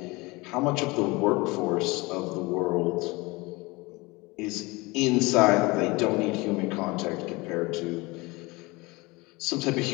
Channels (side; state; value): right; quieter; 23.8 dB